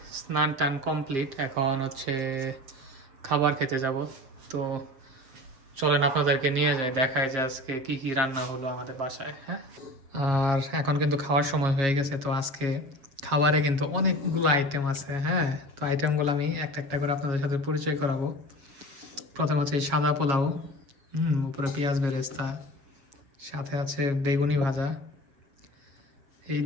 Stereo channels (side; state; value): left; late; 7.3 ms